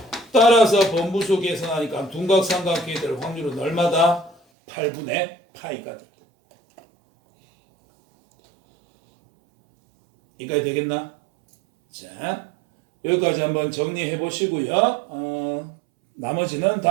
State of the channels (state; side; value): drops out; left; at 4.4 s